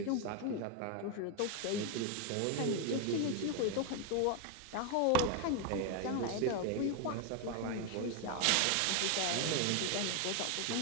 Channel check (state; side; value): different; both; correlation 0.00